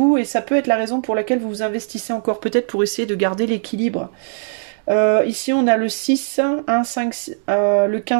Et ça peut être la raison pour laquelle vous vous investissez encore peut-être pour essayer de garder l'équilibre. Ici on a le 6, 1, 5, le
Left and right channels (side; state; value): left; silent; digital silence